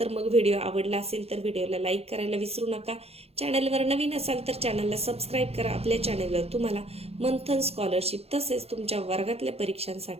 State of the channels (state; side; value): late; left; 0.29 ms